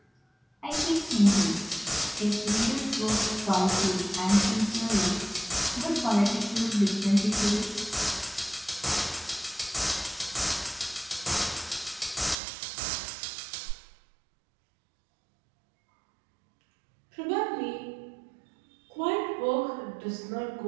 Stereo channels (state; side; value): drops out; left; at 12.4 s